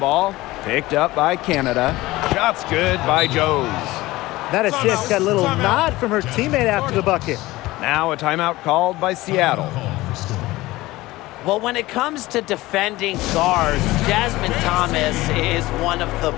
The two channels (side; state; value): right; quieter; 18.7 dB